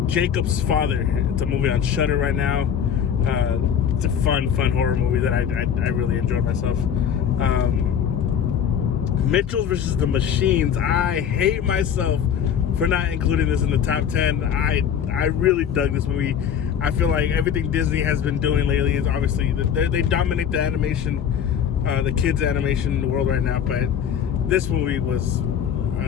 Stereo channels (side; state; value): right; quieter; 8.4 dB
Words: Jacob's Father. It's a movie on Shudder right now. It's a fun horror movie that I really enjoyed myself. Mitchell vs. the Machines. I hate myself for not including this in the top 10. I really dug this movie. I feel like everything Disney has been doing lately is obviously they dominate the animation, the kids animation world right now. But this movie was